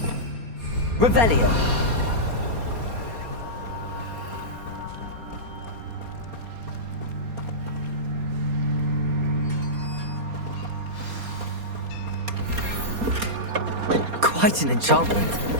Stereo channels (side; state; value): left; late; 4.3 ms